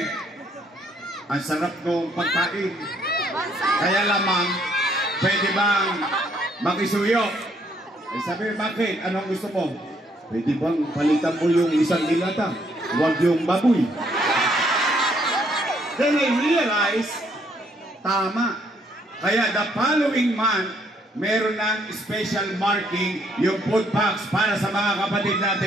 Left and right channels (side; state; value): both; normal; correlation 0.69